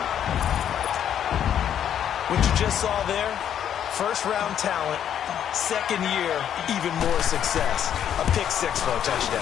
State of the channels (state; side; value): quieter; right; 9.6 dB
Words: What you just saw there, first-round talent, second year, even more success. A pick-6 for a